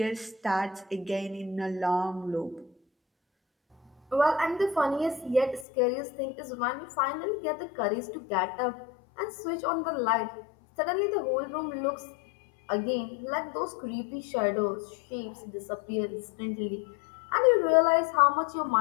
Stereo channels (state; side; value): drops out; right; at 5.7 s